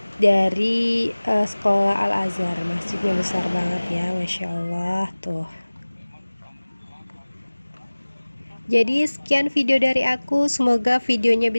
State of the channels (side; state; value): both; inverted; correlation -1.00